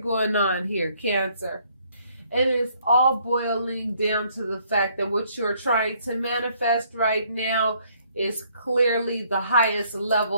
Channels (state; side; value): inverted; both; correlation -0.66